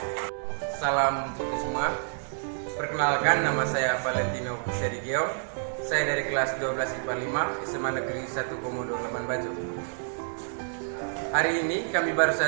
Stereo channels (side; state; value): left; silent; digital silence